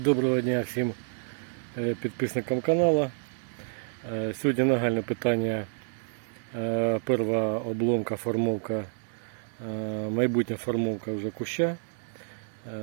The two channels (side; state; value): left; silent; digital silence